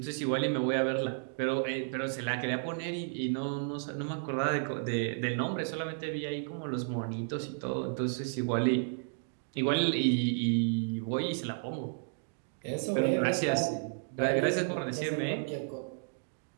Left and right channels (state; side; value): silent; left; digital silence